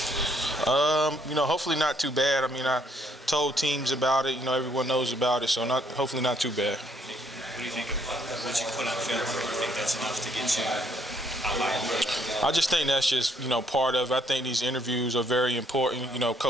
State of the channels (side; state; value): both; normal; correlation 0.69